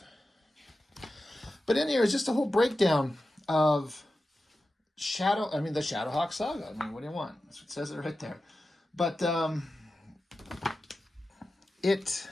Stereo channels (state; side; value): normal; both; correlation 0.93